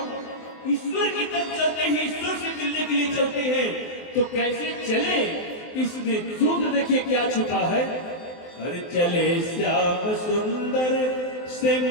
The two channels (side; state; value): right; late; 23 ms